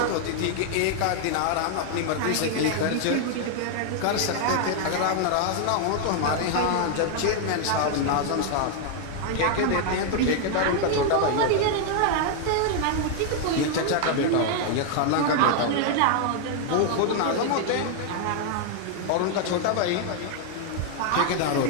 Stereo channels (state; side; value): different; both; correlation 0.00